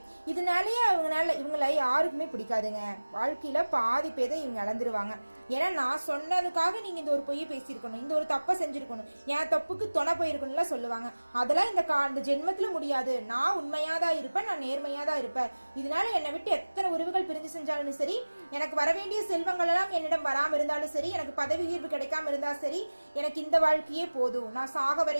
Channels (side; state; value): both; inverted; correlation -1.00